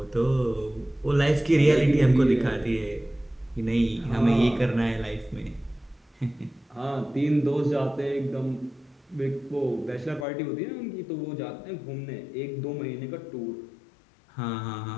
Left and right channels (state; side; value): drops out; right; at 10.2 s